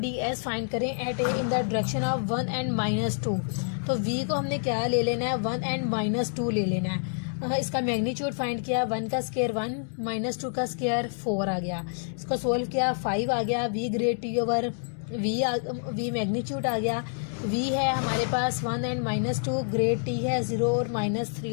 S find करें at A in the direction of 1 and -2। तो वी को हमने क्या ले लेना है, 1 एंड -2 ले लेना है। इसका मैग्नीट्यूड फाइंड किया, 1 का स्क्वायर 1 -2 का स्क्वायर 4 आ गया। इसको सोल्व किया, 5 आ गया। V grad T over we magnitude आ गया। वी है हमारे पास 1 एंड -2, ग्रेड टी है 0 और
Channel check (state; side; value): silent; right; 60 dB below the other